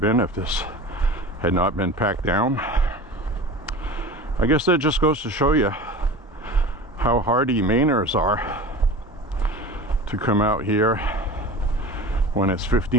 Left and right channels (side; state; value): both; normal; correlation 0.35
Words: been if this had not been packed down. I guess that just goes to show you how hardy Mainers are to come out here when it's